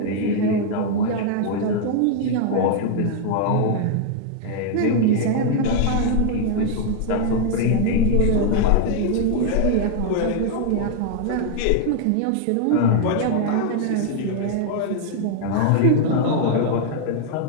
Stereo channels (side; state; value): both; different; correlation 0.00